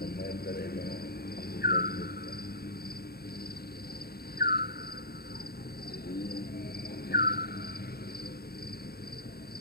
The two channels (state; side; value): late; right; 0.45 ms